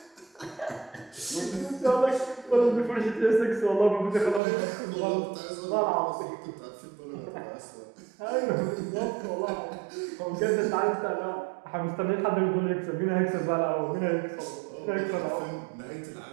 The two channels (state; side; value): drops out; left; at 4.4 s